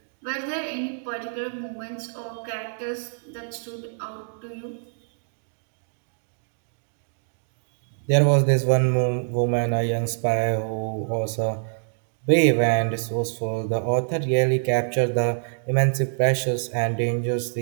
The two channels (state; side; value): silent; left; digital silence